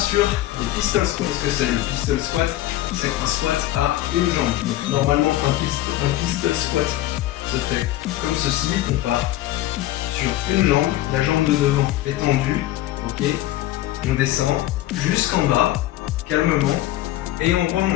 les pistol squats. Qu'est-ce que c'est le pistol squat? C'est un squat à une jambe. Donc, normalement, un pistol squat se fait comme ceci. On part sur une jambe, la jambe de devant est tendue. Ok. On descend jusqu'en bas, calmement, et on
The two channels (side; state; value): right; quieter; 15.0 dB